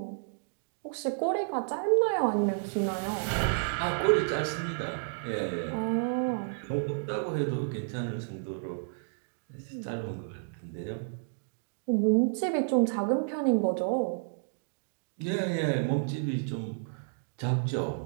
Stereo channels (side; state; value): left; silent; digital silence